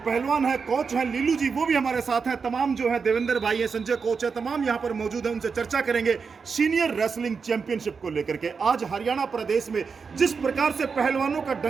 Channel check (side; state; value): left; quieter; 5.4 dB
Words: है, कोच हैं लीलू जी, वो भी हमारे साथ हैं। तमाम जो है देवेंद्र भाई है, संजय कोच है, तमाम यहाँ पर मौजूद हैं। उनसे चर्चा करेंगे सीनियर रेसलिंग चैंपियनशिप को लेकर के। आज हरियाणा प्रदेश में जिस प्रकार से पहलवानों का